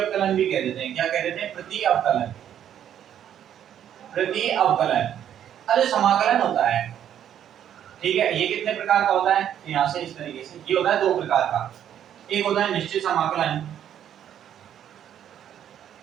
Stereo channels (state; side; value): quieter; left; 10.0 dB